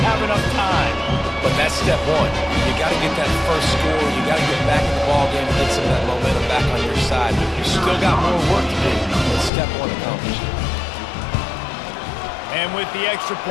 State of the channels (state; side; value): drops out; right; at 9.5 s